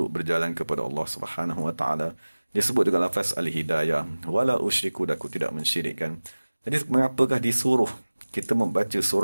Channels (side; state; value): both; inverted; correlation -1.00